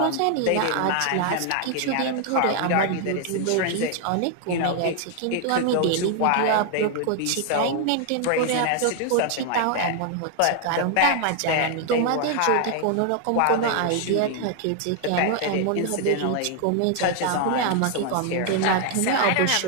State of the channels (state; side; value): different; both; correlation 0.00